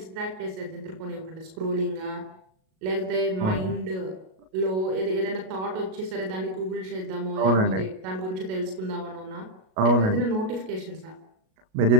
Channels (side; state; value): left; late; 38 ms